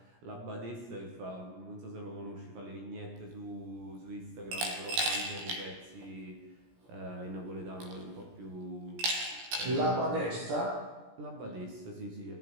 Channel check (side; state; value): left; late; 17 ms